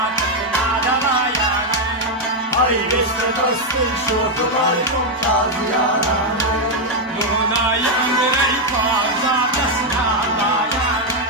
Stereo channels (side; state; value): both; normal; correlation 0.02